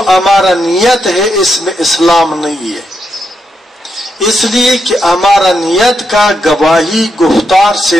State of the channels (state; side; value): normal; both; correlation 0.82